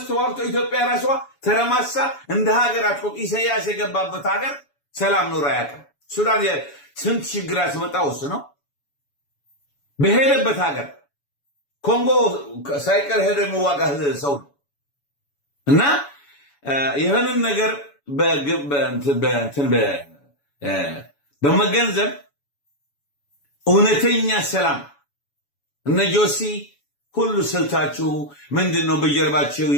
ተዋግቶ ኢትዮጵያ ራሷ ተረማሳ እንደ ሀገር አትቆም። ኢሳያስ የገባበት ሀገር ሰላም ኖሮ አያውቅም። ሱዳን ስንት ችግር ያስመጣው እሱ ነው። በሄደበት ሀገር ኮንጎ ሳይቀር ሄዶ የሚዋጋ ሰው ነው። እና ይህንን ነገር በመገንዘብ እውነተኛ ሰላም እነ ጆሲ ሁሉ ስልታችሁ ምንድን ነው? በጀርባችሁ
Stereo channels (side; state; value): right; late; 7.1 ms